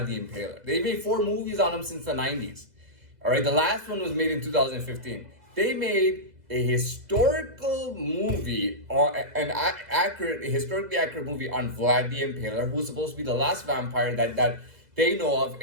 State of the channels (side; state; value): left; late; 2.0 ms